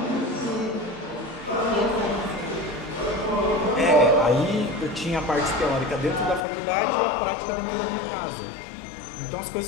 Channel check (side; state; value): right; drops out; at 6.4 s